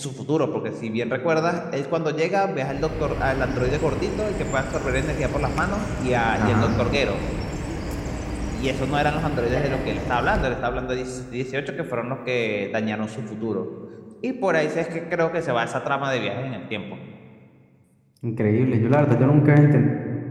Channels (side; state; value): both; identical; correlation 1.00